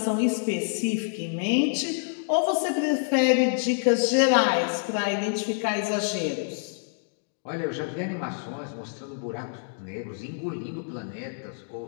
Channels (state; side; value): silent; right; digital silence